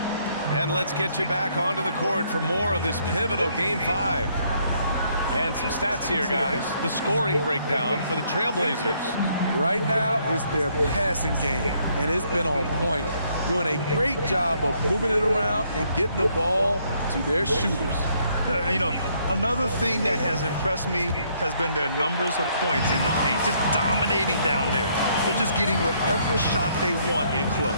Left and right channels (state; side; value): inverted; both; correlation -0.69